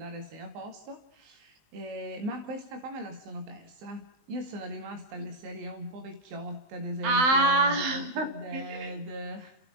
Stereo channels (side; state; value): left; late; 19 ms